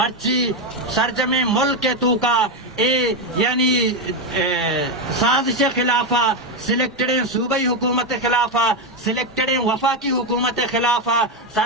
سرجم ملک کے تو کا اے یعنی سازش خلافہ سلیکٹڈیں صوبائی حکومت خلافہ سلیکٹڈیں وفاقی حکومت خلافہ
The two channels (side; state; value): both; normal; correlation 0.08